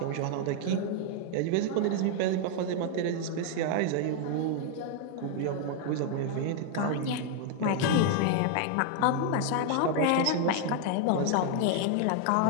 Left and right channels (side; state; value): both; different; correlation 0.00